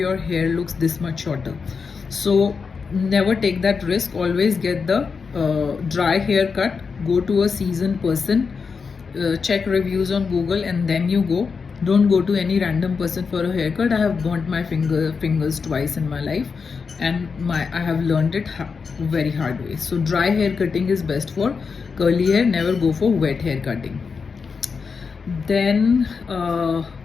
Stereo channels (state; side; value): quieter; right; 5.3 dB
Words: hair looks this much shorter. So never take that risk. Always get the dry haircut. Go to a seasoned person, check reviews on Google, and then you go. Don't go to any random person for a haircut. I have burnt my fingers twice in my life, and I have learned it very hard way. So dry hair cutting is best for curly hair. Never go for wet hair cutting. Then